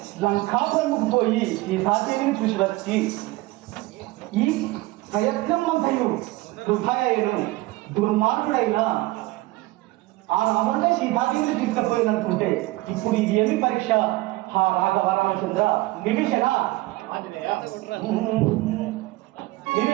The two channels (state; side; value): quieter; left; 19.7 dB